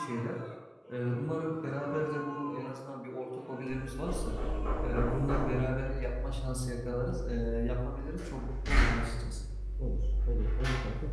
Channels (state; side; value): identical; both; correlation 1.00